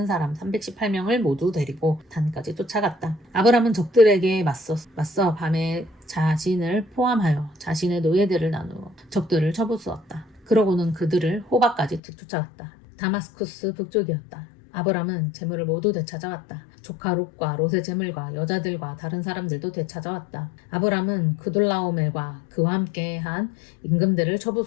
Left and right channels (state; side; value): drops out; right; at 12.0 s